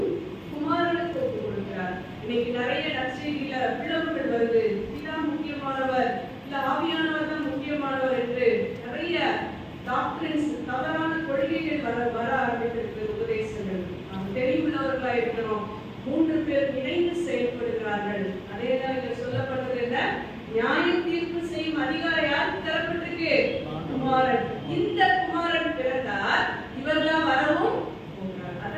குமாரனுக்கு ஒப்புக் கொடுக்கிறார். இன்னைக்கு நிறைய நற்செய்தியில பிளவுகள் வருது. இதுதான் முக்கியமானவர், இல்ல ஆவியானவர் தான் முக்கியமானவர் என்று நிறைய டாக்டரின்ஸ், தவறான கொள்கைகள் வர ஆரம்பித்திருக்கு. உபதேசங்கள் நாம் தெளிவுள்ளவர்களா இருக்கணும். 3 பேர் இணைந்து செயல்படுகிறார்கள். அதேதான் இங்க சொல்லப்பட்டது என்ன? நியாய தீர்ப்பு செய்யும் அதிகாரம் யாருக்கு தரப்பட்டிருக்கு? குமாரன். இந்த குமாரன் பிறந்தார், இவர்தான் வரவும் போகிறார்.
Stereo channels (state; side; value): identical; both; correlation 1.00